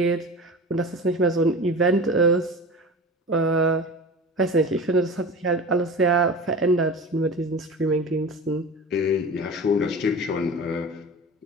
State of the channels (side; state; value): both; normal; correlation 0.34